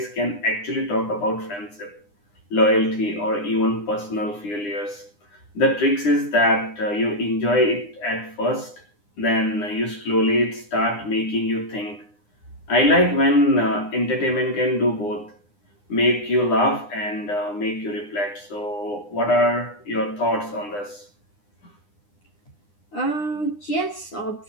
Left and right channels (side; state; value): right; late; 9.8 ms